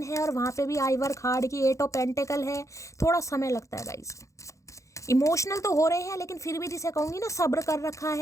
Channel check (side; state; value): right; late; 0.15 ms